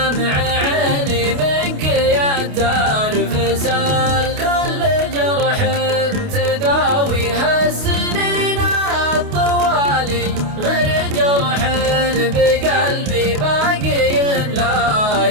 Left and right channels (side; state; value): left; late; 28 ms